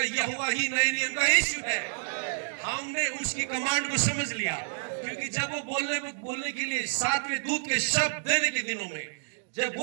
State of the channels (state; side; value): silent; left; digital silence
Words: यहोवा ही नए नियम का यीशु है। हमने उसकी कमांड को समझ लिया, क्योंकि जब वो बोलने के लिए सातवें दूत के शब्द देने के दिनों में जब